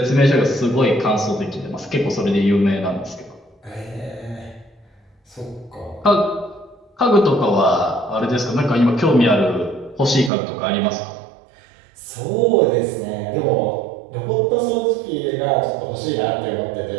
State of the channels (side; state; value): left; drops out; at 10.3 s